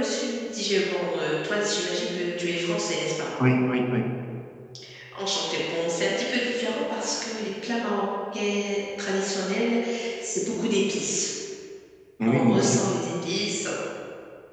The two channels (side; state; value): both; identical; correlation 1.00